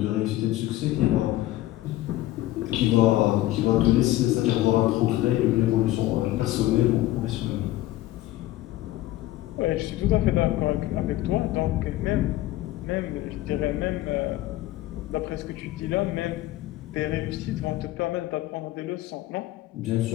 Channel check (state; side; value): quieter; right; 15.8 dB